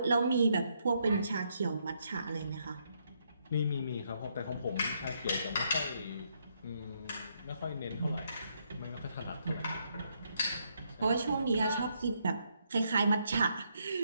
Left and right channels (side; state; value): both; inverted; correlation -0.75